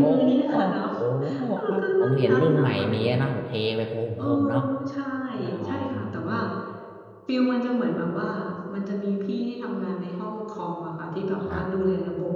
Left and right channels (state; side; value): identical; both; correlation 1.00